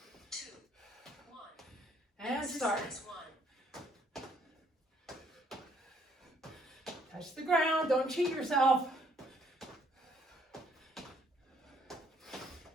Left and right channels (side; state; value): both; normal; correlation 0.65